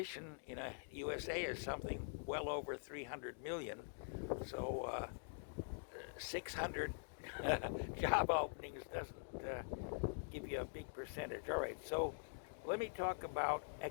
in the USA is something well over 300 million. So 600 job openings doesn't give you a big percentage. All right, so let me talk about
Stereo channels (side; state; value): right; silent; digital silence